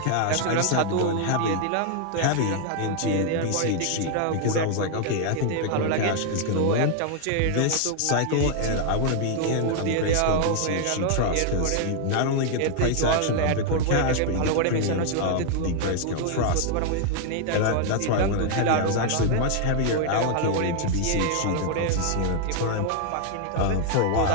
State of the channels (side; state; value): both; different; correlation 0.00